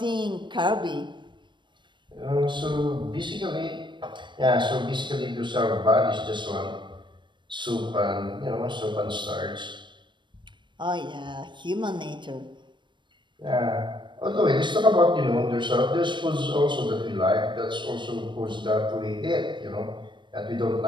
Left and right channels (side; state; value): left; late; 0.22 ms